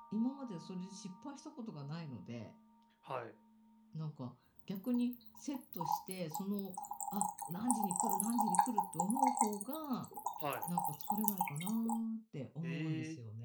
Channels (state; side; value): identical; both; correlation 1.00